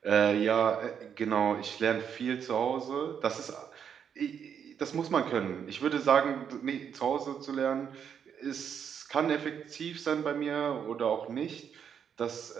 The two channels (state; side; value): quieter; left; 7.9 dB